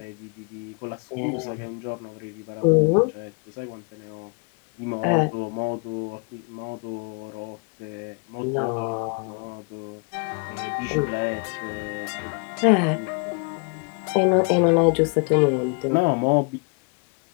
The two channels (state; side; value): quieter; right; 36.1 dB